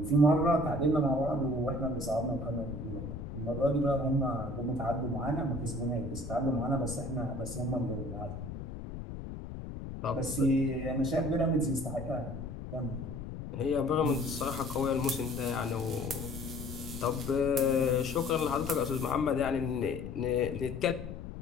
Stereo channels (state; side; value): noise; left; rumble, 8 dB below the sound